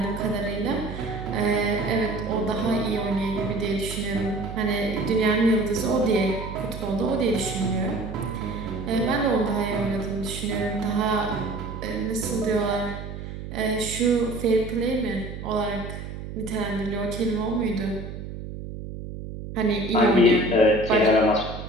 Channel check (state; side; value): noise; right; hum, 9 dB below the sound